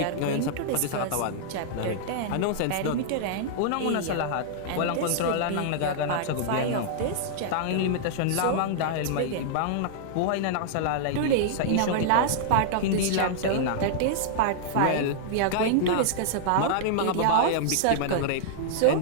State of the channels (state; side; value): different; both; correlation -0.01